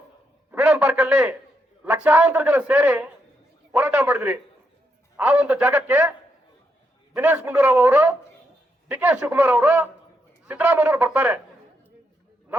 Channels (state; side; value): normal; both; correlation 0.80